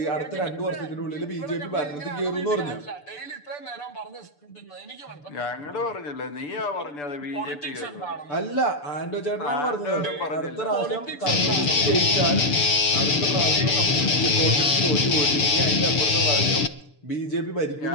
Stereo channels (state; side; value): late; right; 6.8 ms